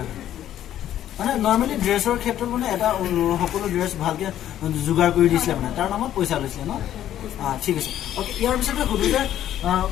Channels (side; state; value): right; quieter; 11.7 dB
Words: মানে নৰ্মেলি ড্ৰেছৰ ক্ষেত্ৰত মানে এটা সকলো ড্ৰেছ ভালকৈ যোগাৰ কৰি দিছিলে, মানে তাৰ নামত পইচা লৈছিলে ন? ঠিক আছে, অ'কে। ইয়াৰ পিছতে সুবিধা